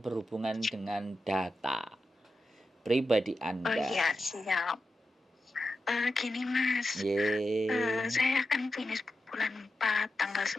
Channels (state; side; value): normal; both; correlation 0.90